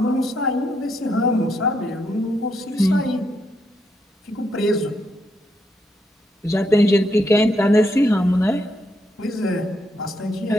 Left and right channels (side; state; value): both; normal; correlation 0.78